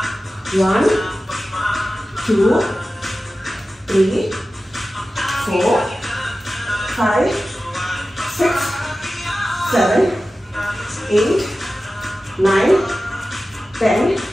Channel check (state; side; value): normal; both; correlation 0.94